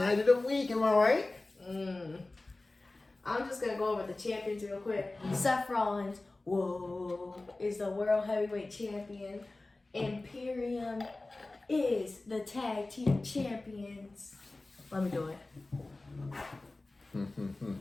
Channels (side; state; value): right; quieter; 3.0 dB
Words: of the week, am I right? I'm just going to go over the champions real quick. Seth Rollins, is the World Heavyweight Champion. Imperium is the Tag Team Champions. Let me do it.